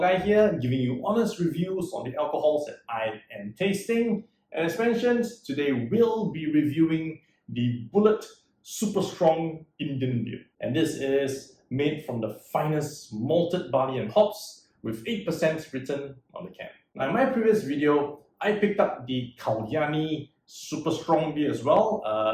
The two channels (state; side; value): identical; both; correlation 1.00